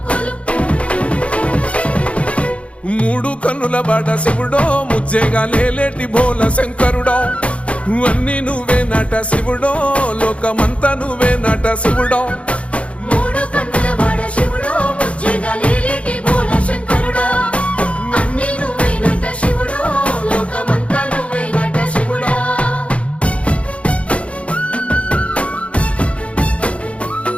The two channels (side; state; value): right; late; 0.062 ms